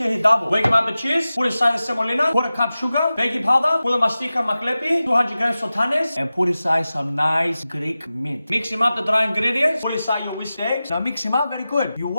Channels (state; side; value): inverted; both; correlation -0.95